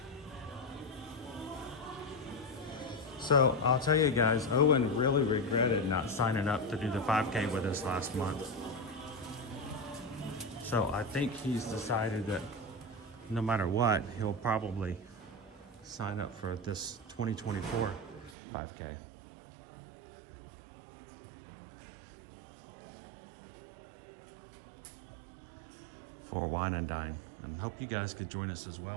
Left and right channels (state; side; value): drops out; left; at 18.4 s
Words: So I'll tell you guys, Owen really regretted not signing up to do the 5K with us last month. So I think he's decided that no matter what, he'll probably sign up for this 2024 5K. For Wine and Dine, and hope you guys could join us as